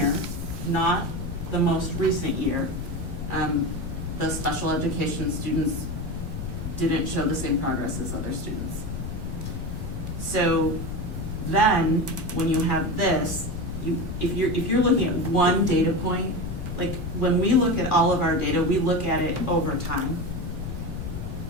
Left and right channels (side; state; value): left; noise; rumble, 6 dB below the sound